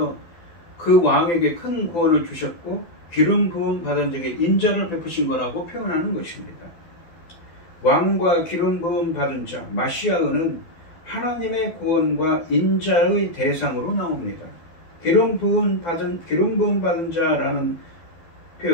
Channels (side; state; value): right; late; 12 ms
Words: 그 왕에게 큰 구원을 주셨고 기름 부음 받은 자에게 인자를 베푸신 거라고 표현하는 것입니다. 왕과 기름 부음 받은 자, 마시아는 하나님의 구원과 인자의 대상으로 나옵니다. 기름 부음 받은 자라는